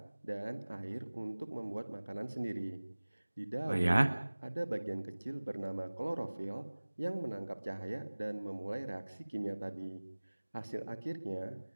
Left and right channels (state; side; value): inverted; both; correlation -1.00